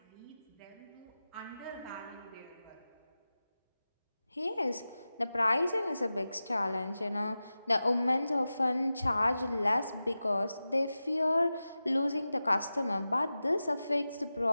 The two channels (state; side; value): inverted; both; correlation -0.94